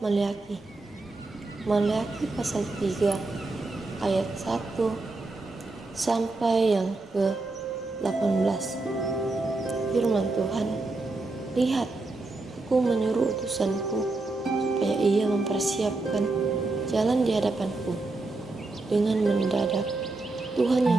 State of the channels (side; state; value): left; quieter; 3.2 dB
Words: pasal 3 ayat 1 sampai yang ke-18. Firman Tuhan, lihat, aku menyuruh utusanku supaya ia mempersiapkan jalan di hadapanku. Dengan mendadak Tuhan